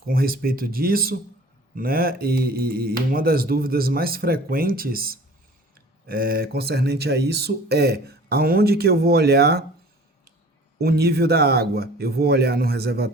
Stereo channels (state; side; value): normal; both; correlation 0.46